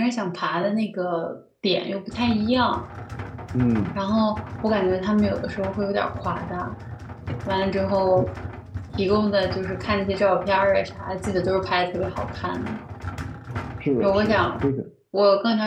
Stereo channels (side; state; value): both; identical; correlation 1.00